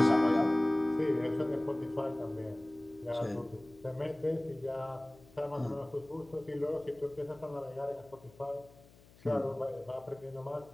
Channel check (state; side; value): noise; left; hum, 25 dB below the sound